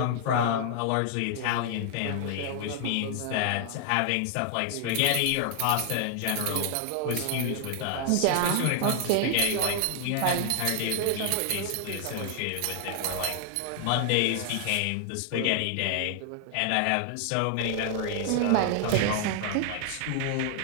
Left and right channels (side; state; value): both; different; correlation 0.00